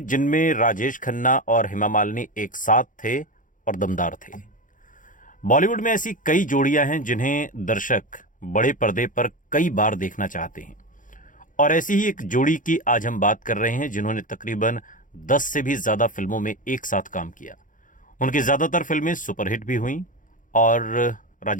जिनमें राजेश खन्ना और हेमा मालिनी एक साथ थे और दमदार थे। बॉलीवुड में ऐसी कई जोड़ियां हैं जिन्हें दर्शक बड़े पर्दे पर कई बार देखना चाहते हैं, और ऐसी ही एक जोड़ी की आज हम बात कर रहे हैं जिन्होंने तकरीबन 10 से भी ज़्यादा फिल्मों में एक साथ काम किया। उनकी ज़्यादातर फिल्में सुपरहिट भी हुईं, और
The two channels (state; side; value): late; right; 0.38 ms